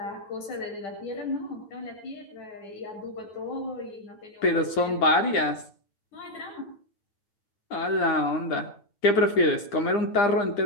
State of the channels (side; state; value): right; late; 9.8 ms